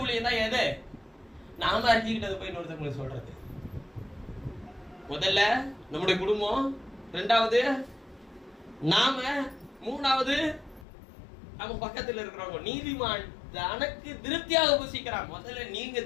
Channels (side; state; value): right; drops out; at 10.9 s